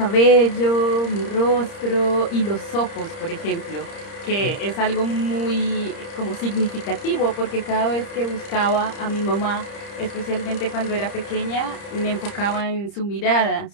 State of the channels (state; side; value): late; right; 30 ms